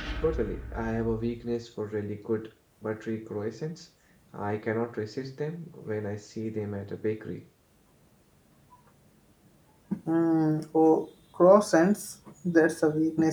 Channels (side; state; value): both; identical; correlation 1.00